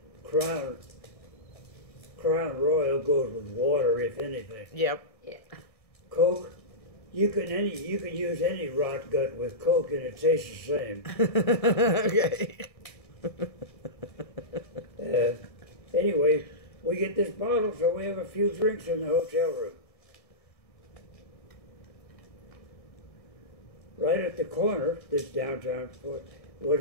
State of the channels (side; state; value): right; late; 1.6 ms